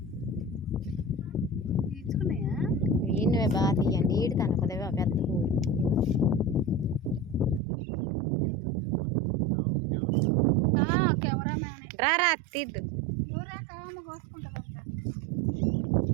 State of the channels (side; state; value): left; drops out; at 7.6 s